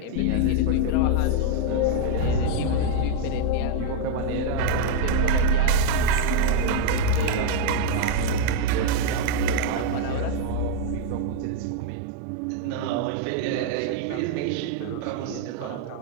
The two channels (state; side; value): different; both; correlation 0.00